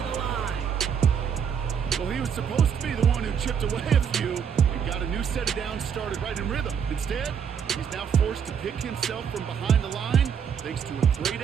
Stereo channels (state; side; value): quieter; left; 7.4 dB